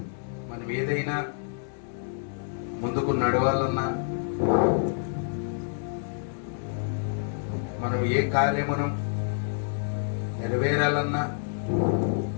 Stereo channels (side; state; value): right; silent; digital silence